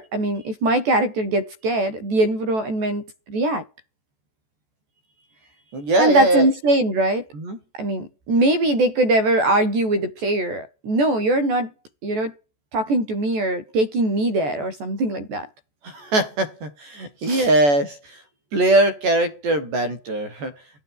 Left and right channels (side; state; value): left; late; 14 ms